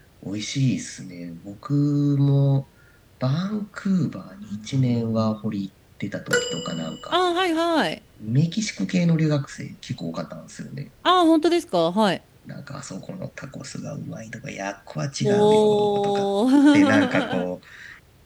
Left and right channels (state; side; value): identical; both; correlation 1.00